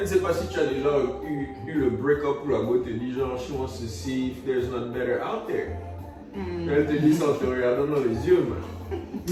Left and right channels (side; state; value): both; identical; correlation 1.00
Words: ne sais pas si tu as déjà eu le break-up où la go te dit genre, she wants to see if there's not better out there. Elle te dit ça en te regardant dans les yeux, man.